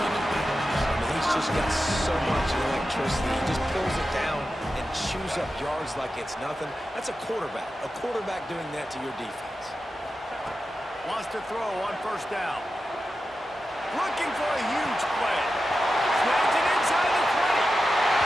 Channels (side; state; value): both; normal; correlation 0.91